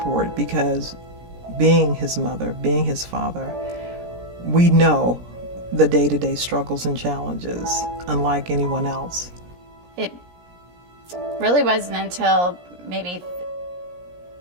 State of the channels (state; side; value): late; left; 17 ms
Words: because being his mother, being his father, we know the day-to-day struggles and challenges unlike anyone else. It really wasn't until maybe